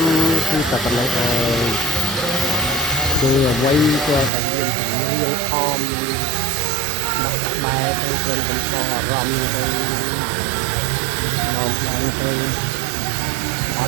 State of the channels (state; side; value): drops out; left; at 4.3 s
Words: ំគឺតែប៉ុណ្ណឹងហើយគឺអ្វីក៏តែមានចម្រៀងអមដាក់ក្បែរទៅគ្រាន់តែដល់អារម្មណ៍ទៅមកបានទៅអត